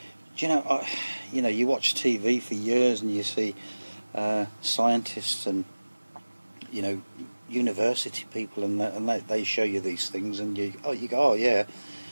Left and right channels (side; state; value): both; inverted; correlation -1.00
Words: know, you watch TV for years and you see scientists and, you know, university people, and they show you these things, and you go, oh yeah,